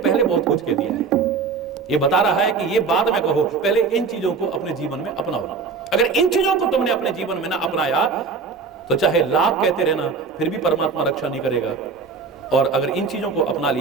बहुत कुछ कह दिया है। ये बता रहा है कि ये बाद में कहो, पहले इन चीजों को अपने जीवन में अपनाओ। अगर इन चीजों को तुमने अपने जीवन में ना अपनाया तो चाहे लाख कहते रहना फिर भी परमात्मा रक्षा नहीं करेगा, और अगर इन चीजों को अपना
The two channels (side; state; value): left; quieter; 5.1 dB